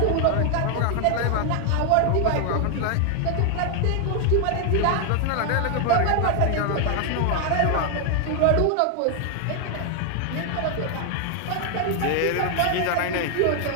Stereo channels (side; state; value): both; different; correlation 0.00